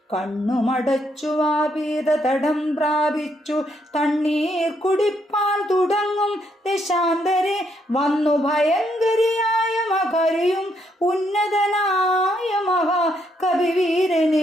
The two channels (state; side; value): normal; both; correlation 0.74